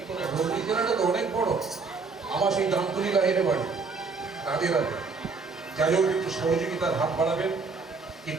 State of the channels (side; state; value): left; quieter; 4.5 dB